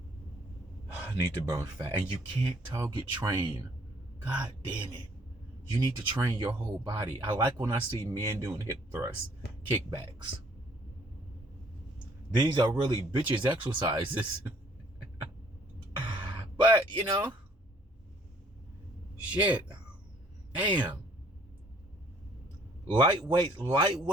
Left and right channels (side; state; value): both; normal; correlation 0.61